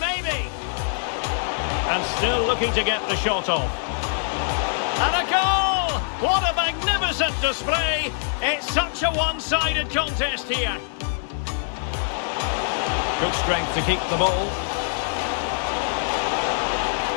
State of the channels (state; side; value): silent; right; 61 dB below the other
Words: And still looking to get the shot off. And a goal! What a magnificent display! It's such a one-sided contest here. Good strength to keep the ball.